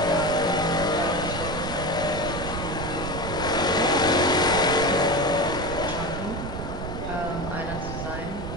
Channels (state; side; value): noise; right; rumble, 7 dB below the sound